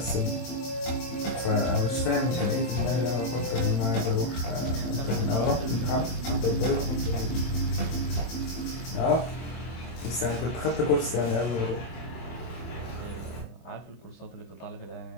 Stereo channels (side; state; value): right; late; 24 ms